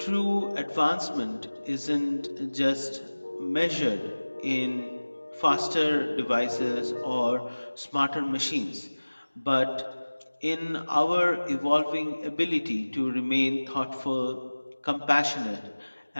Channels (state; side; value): inverted; both; correlation -1.00